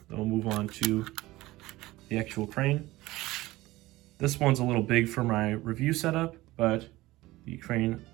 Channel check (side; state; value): left; quieter; 18.4 dB